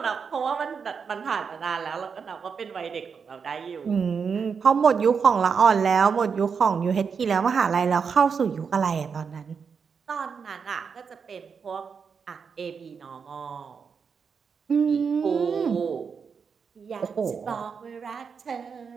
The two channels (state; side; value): quieter; left; 6.0 dB